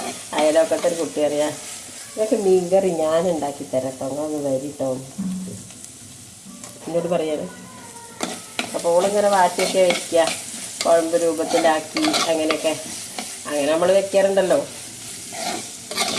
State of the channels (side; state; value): both; identical; correlation 1.00